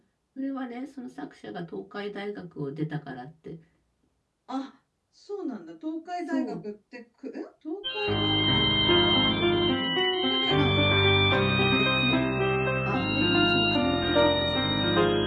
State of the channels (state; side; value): identical; both; correlation 1.00